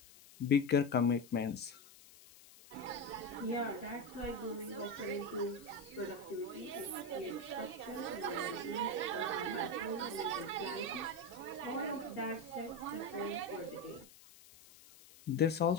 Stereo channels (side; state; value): left; noise; hiss, 21 dB below the sound